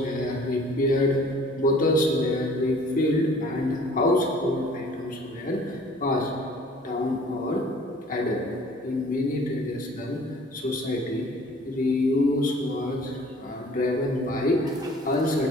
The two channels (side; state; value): both; normal; correlation 0.52